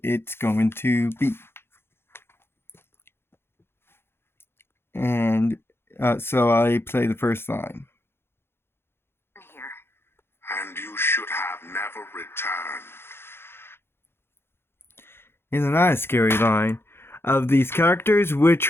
it's going to be. And so I play the first line. Here. And you should have never returned. Isn't that a scary line? Of these characters,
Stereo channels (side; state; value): right; late; 0.11 ms